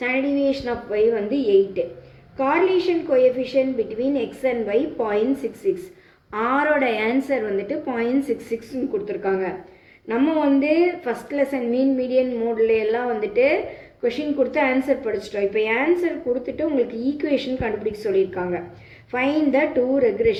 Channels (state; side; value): identical; both; correlation 1.00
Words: டீவியேஷன் ஆஃப் ஒய் வந்து 8. Correlation coefficient between x and y 0.66. ஆரோட ஆன்சர் வந்துட்டு 0.66ன்னு கொடுத்துருக்காங்க. நம்ம வந்து ஃபஸ்ட் லெசன் மீன் மீடியன் மோடில் எல்லாம் வந்துட்டு கொஷின் கொடுத்து ஆன்சர் படிச்சிட்டோம். இப்போ ஆன்சர் கொடுத்துட்டு உங்களுக்கு ஈக்குவேஷன் கண்டுபிடிக்க சொல்லியிருக்காங்க. ஃபைண்ட் த 2